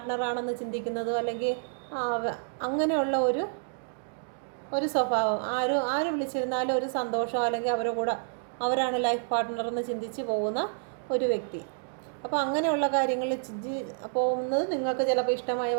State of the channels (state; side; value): silent; left; digital silence